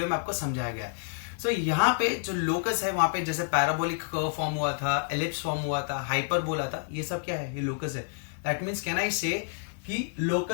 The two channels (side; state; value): right; silent; 59 dB below the other